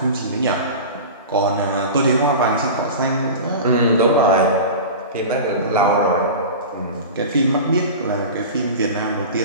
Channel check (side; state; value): both; inverted; correlation -0.31